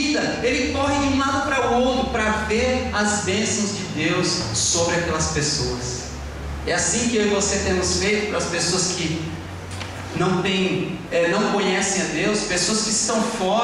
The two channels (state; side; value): identical; both; correlation 1.00